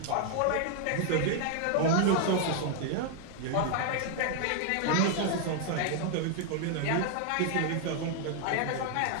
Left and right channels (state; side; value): different; both; correlation 0.00